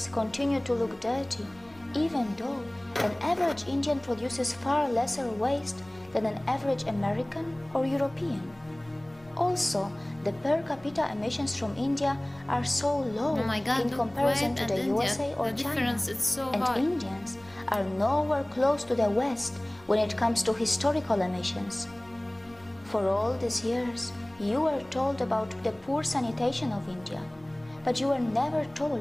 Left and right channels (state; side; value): noise; left; hum, 28 dB below the sound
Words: continue to look dirty, even though an average Indian produces far lesser waste than an average American or European. Also, the per capita emissions from India are so low Oh my God, in look, comparison Kuwait to and the India, USA or the China, difference is so and high. Indians are nowhere close to the West when it comes to historical emissions. For all these years, you were told about the poor sanitation of India, but you were never